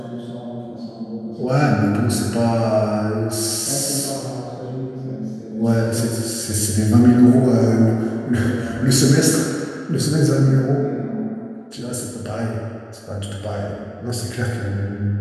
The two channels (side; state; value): both; identical; correlation 1.00